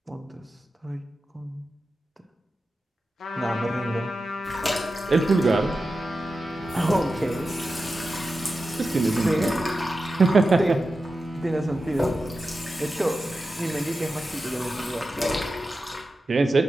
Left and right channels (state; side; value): normal; both; correlation 0.92